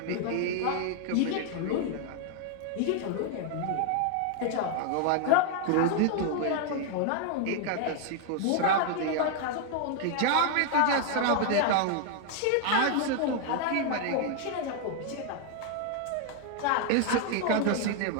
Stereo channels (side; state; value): both; different; correlation 0.00